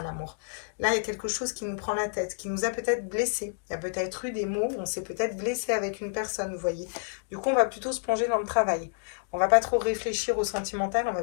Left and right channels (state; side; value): silent; right; digital silence